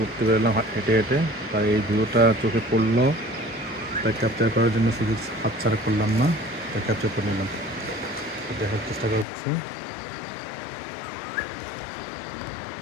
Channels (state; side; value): drops out; right; at 9.2 s